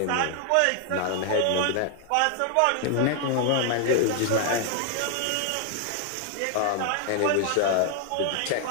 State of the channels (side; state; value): both; different; correlation 0.00